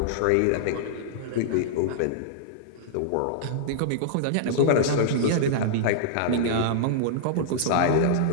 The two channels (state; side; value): different; both; correlation -0.02